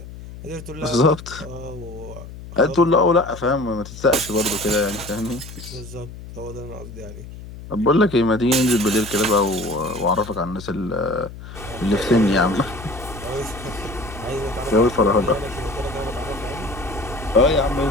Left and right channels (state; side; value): noise; left; hum, 14 dB below the sound